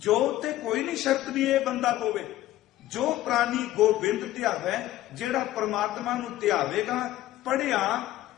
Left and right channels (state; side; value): quieter; right; 14.6 dB